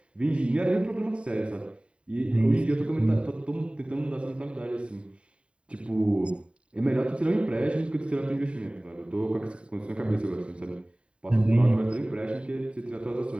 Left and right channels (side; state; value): left; late; 0.058 ms